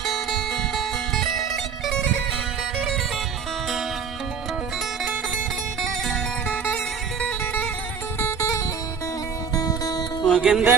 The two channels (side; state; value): left; quieter; 6.4 dB